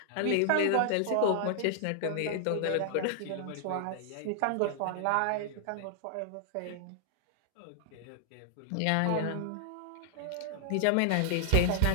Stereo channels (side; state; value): both; different; correlation 0.00